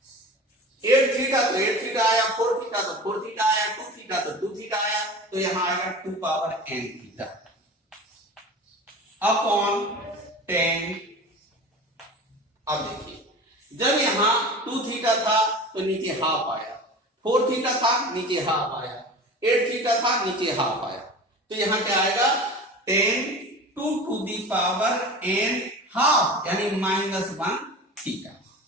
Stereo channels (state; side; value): normal; both; correlation 0.35